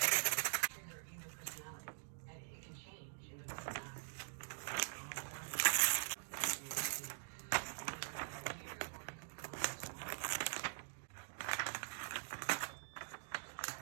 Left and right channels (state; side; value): silent; left; digital silence